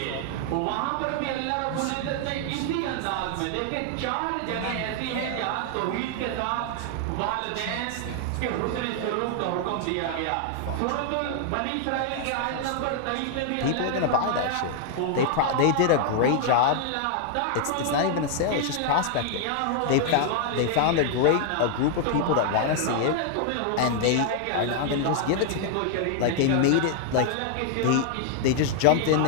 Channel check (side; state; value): both; different; correlation 0.00